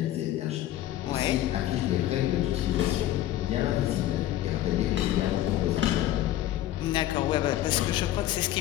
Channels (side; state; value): right; quieter; 13.6 dB